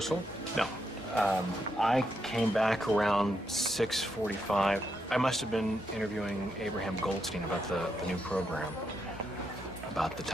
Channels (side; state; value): both; normal; correlation 0.81